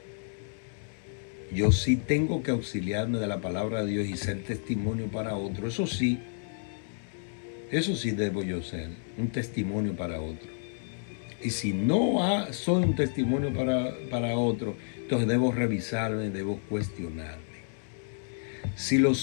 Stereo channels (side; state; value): right; silent; digital silence